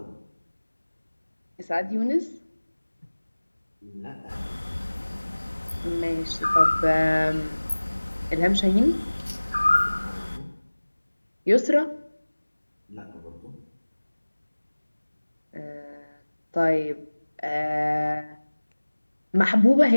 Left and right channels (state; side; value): inverted; both; correlation -1.00